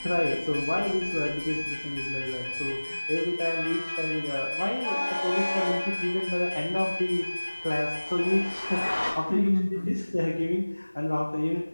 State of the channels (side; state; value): both; inverted; correlation -1.00